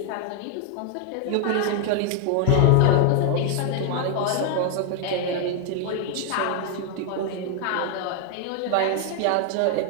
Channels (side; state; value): both; different; correlation 0.01